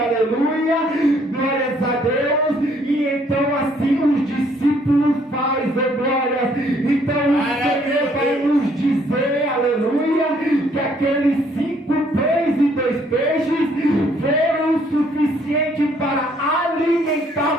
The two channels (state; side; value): normal; both; correlation 0.65